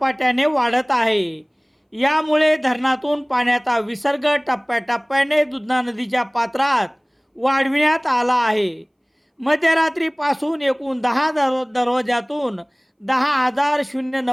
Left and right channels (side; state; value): both; identical; correlation 1.00